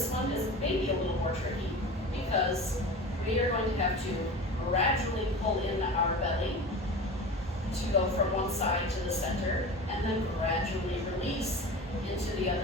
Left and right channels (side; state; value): both; normal; correlation 0.32